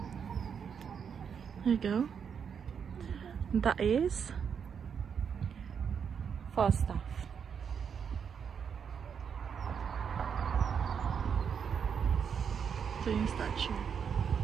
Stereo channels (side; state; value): left; quieter; 7.1 dB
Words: there you go. That is Falstaff. Ito yung statue.